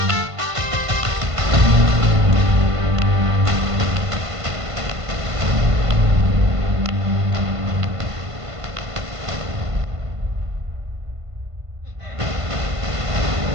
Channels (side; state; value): left; late; 1.5 ms